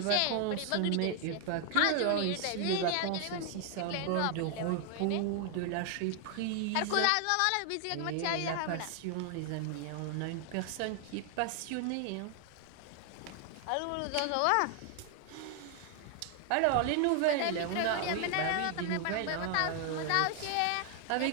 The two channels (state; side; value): different; both; correlation 0.00